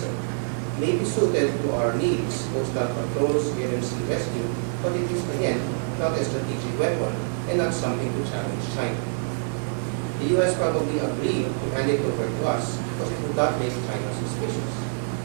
May be suited to our needs, coastal patrols, air and sea rescue, but it is, again, not a strategic weapon and not something to challenge China. The U.S. probably agreed to hand it over to us because it would not make China suspicious.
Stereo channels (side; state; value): left; silent; 61 dB below the other